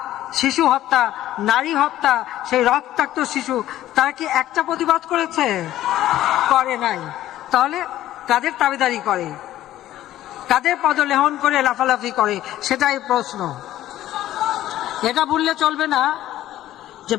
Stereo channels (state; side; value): quieter; right; 13.7 dB